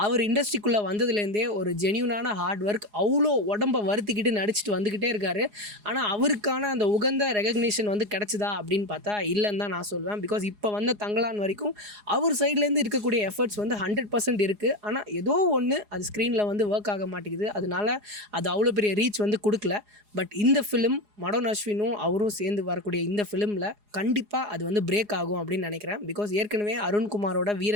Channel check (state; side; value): late; left; 4.8 ms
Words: அவர் இண்டஸ்ட்ரிக்குள்ளே வந்ததுலேருந்தே ஒரு ஜென்யூனான ஹார்ட் ஒர்க், அவ்வளோ உடம்பை வருத்திக்கிட்டு நடிச்சுட்டு வந்துக்கிட்டே இருக்காரு. ஆனால் அவருக்கான அந்த உகந்த ரெகக்னிஷன் வந்து கிடச்சிதா அப்படின்னு பார்த்தா இல்லைன்னு தான் நான் சொல்வேன். பிகாஸ் இப்போ வந்த தங்கலான் வரைக்கும் அவர் சைட்லேருந்து இருக்கக்கூடிய எஃபர்ட்ஸ் வந்து 100% இருக்குது. ஆனால் ஏதோ ஒன்று அது ஸ்க்ரீனில் வந்து ஒர்க் ஆக மாட்டேங்குது. அதனால அது அவ்வளோ பெரிய ரீச் வந்து கொடுக்கல. பட் இந்த ஃபிலிம் மடோன் அஸ்வினும் அவரும் சேர்ந்து வரக்கூடிய இந்த ஃபிலிமில் கண்டிப்பாக அது வந்து பிரேக் ஆகும் அப்படின்னு நினைக்கிறேன். பிகாஸ் ஏற்கனவே அருண்குமாரோட